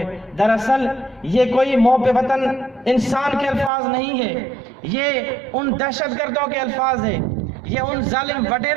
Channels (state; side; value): drops out; left; at 3.7 s